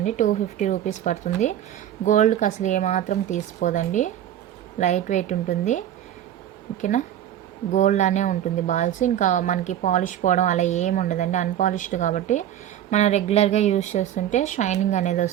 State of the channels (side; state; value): left; quieter; 11.1 dB